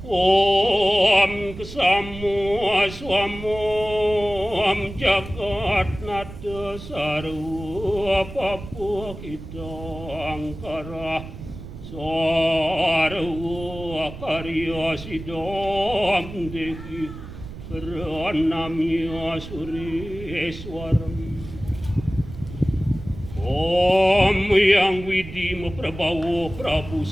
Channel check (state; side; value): noise; right; rumble, 13 dB below the sound